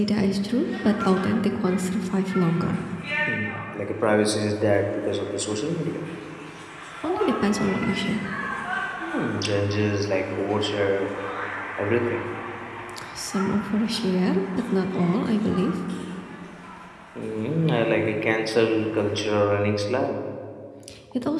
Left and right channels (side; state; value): both; identical; correlation 1.00